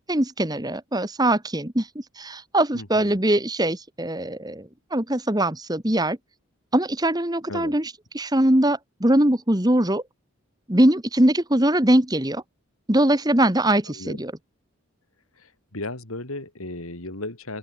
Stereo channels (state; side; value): normal; both; correlation 0.74